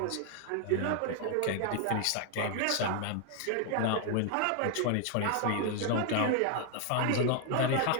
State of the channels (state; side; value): different; both; correlation 0.00